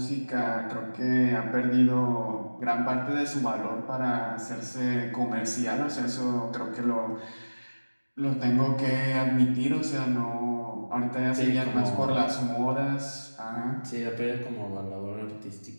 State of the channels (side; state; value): both; inverted; correlation -1.00